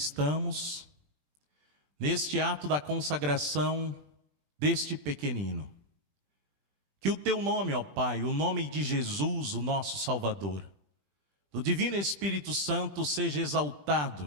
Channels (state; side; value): late; left; 20 ms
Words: neste ato da consagração deste pequenino. Que o teu nome, ó Pai, o nome de Jesus, o nosso Salvador, do Divino Espírito Santo, seja